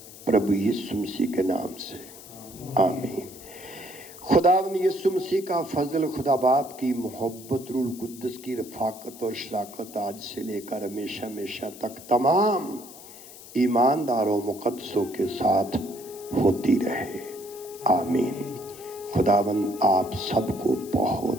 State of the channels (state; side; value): noise; left; hiss, 17 dB below the sound